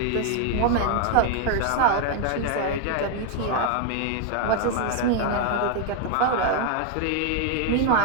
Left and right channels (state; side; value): different; both; correlation 0.00